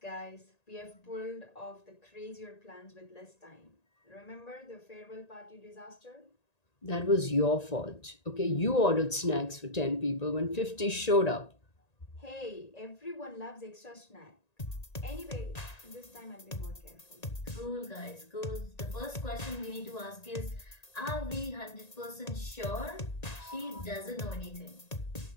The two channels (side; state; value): right; late; 1.9 ms